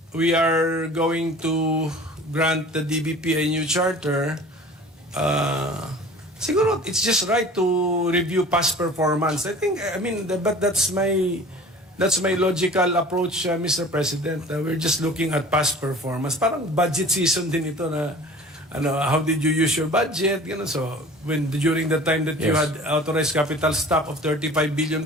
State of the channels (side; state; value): both; normal; correlation 0.43